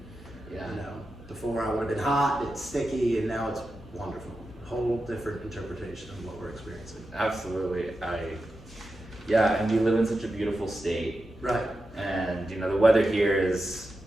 before I would have been hot, it's sticky, and now it's wonderful. Whole different interpretation of what we're experiencing. Absolutely. And we live in such a beautiful state. Right. And the weather here is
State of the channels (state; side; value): noise; left; hum, 20 dB below the sound